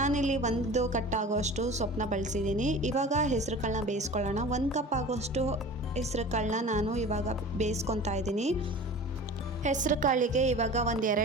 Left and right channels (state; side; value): normal; both; correlation 0.38